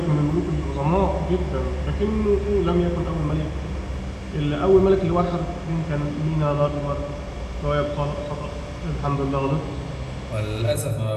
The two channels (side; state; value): both; identical; correlation 1.00